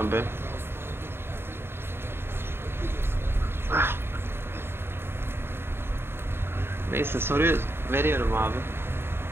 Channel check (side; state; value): left; late; 0.11 ms